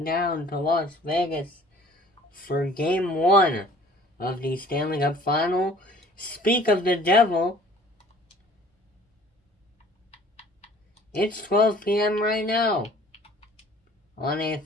down to Las Vegas for Game 1 of the Stanley Cup Final. Speak of the devil, it's 12 p.m. right now on a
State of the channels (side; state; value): both; normal; correlation 0.52